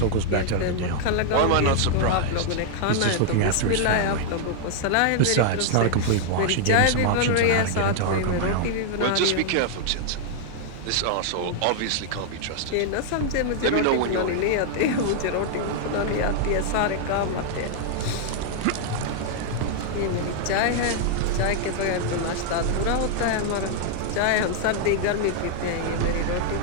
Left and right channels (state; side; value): different; both; correlation -0.01